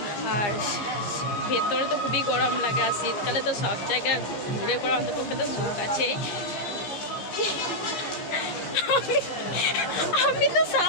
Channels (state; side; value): late; right; 15 ms